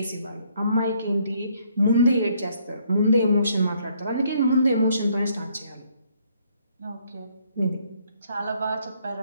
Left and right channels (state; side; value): inverted; both; correlation -0.67